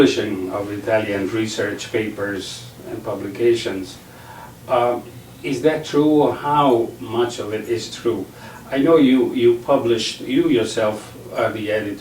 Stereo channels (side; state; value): both; identical; correlation 1.00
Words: of Italian research papers and publications. Is that true, or how much of it is true? I know you yourself are the